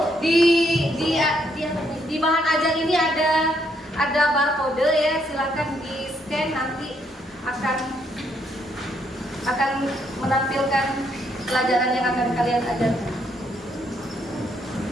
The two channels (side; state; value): both; normal; correlation 0.73